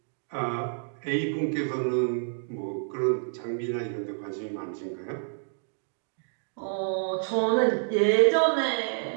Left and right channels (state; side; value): silent; left; digital silence